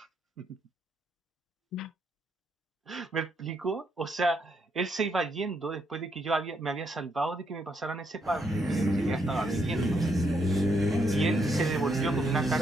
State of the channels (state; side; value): normal; both; correlation 0.76